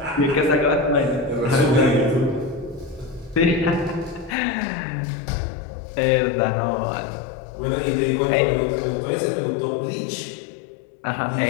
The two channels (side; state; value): right; drops out; at 4.4 s